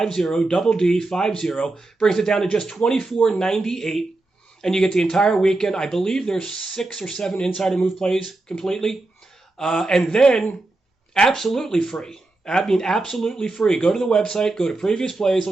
double D50. Brings it down to just $24.98. And you get the entire weekend. I believe there's 6 or 7 insider move plays completely. And then absolutely free. I mean, absolutely free. Go to the website, go to previous plays,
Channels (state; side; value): quieter; left; 3.0 dB